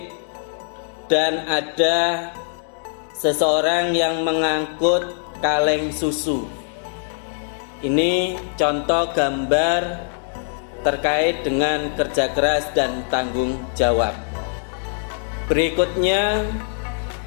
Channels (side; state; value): right; silent; digital silence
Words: dan ada seseorang yang mengangkut kaleng susu. Ini contoh gambar terkait dengan kerja keras dan tanggung jawab. Berikutnya,